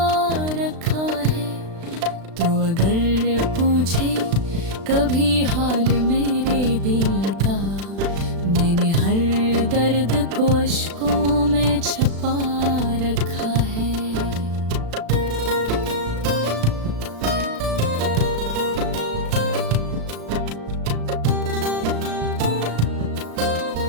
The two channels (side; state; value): left; late; 36 ms